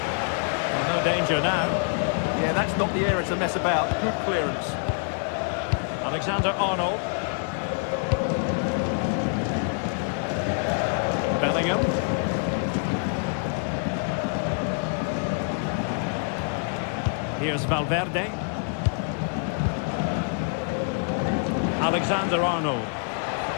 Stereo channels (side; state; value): right; silent; 55 dB below the other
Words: no danger now. Yeah, that's not the area to mess about. Good clearance. Alexander-Arnold. Bellingham. Here's Valverde. Alexander-Arnold.